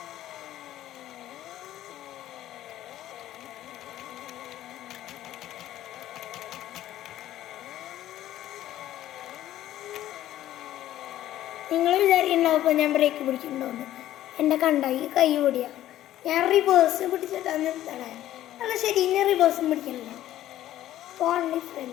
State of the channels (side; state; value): right; quieter; 13.3 dB